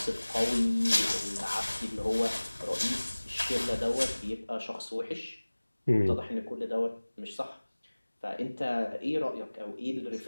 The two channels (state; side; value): inverted; both; correlation -1.00